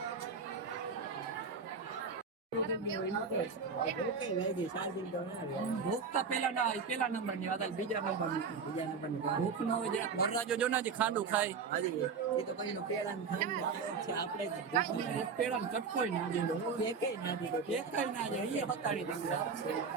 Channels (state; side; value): quieter; left; 5.5 dB